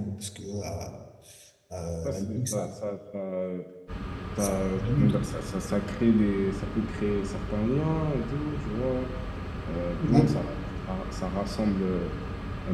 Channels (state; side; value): identical; both; correlation 1.00